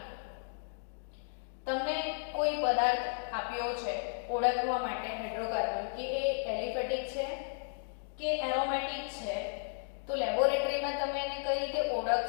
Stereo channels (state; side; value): silent; right; digital silence